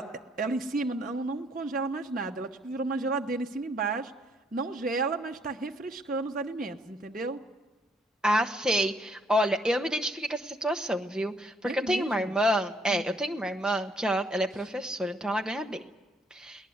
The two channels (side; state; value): both; normal; correlation 0.67